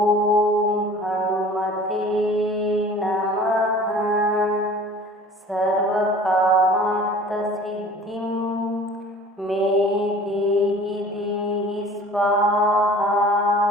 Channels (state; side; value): normal; both; correlation 0.45